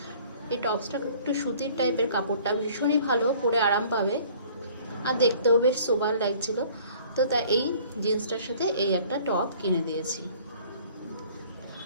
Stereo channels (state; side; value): inverted; both; correlation -0.53